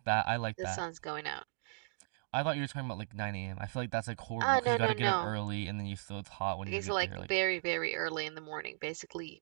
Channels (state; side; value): silent; left; digital silence